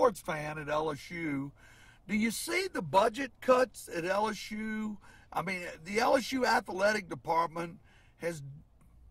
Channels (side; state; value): both; identical; correlation 1.00